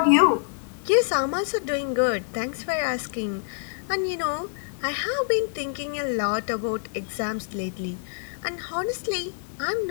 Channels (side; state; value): right; silent; digital silence